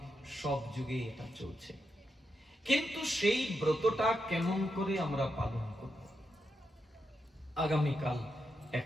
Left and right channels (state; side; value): normal; both; correlation 0.84